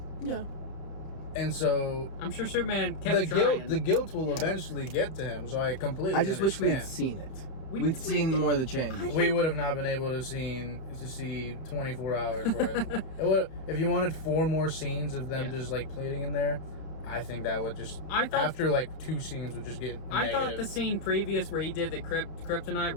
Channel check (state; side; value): late; right; 31 ms